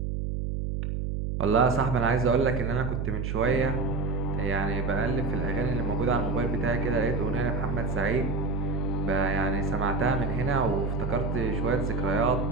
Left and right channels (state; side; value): noise; right; hum, 2 dB below the sound